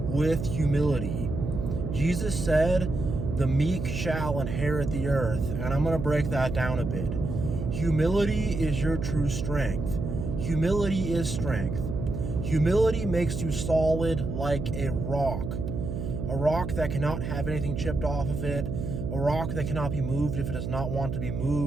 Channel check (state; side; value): noise; right; hum, 4 dB below the sound